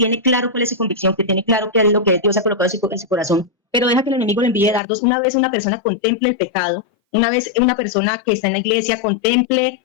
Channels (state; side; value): drops out; right; at 4.8 s